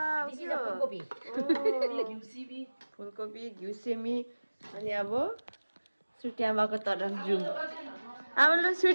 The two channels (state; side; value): inverted; both; correlation -1.00